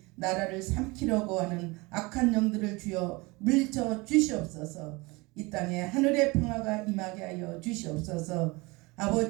나라를 삼키려고 하는 악한 영들을 주여 물리쳐 주시옵소서. 이 땅에 하늘의 평화가 임하게 하여 주시옵소서.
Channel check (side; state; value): left; quieter; 24.7 dB